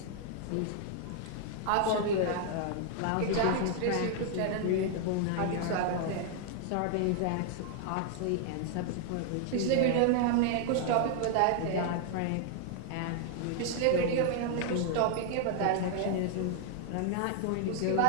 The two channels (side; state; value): both; different; correlation 0.00